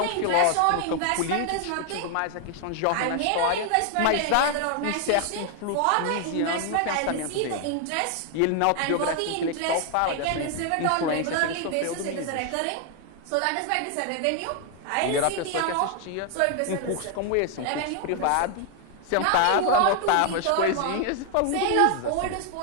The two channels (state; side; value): different; both; correlation 0.00